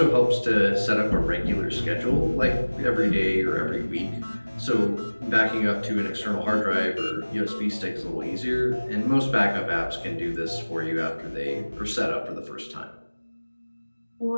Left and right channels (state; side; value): inverted; both; correlation -1.00